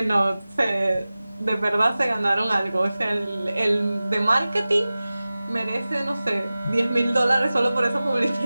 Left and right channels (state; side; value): inverted; both; correlation -0.97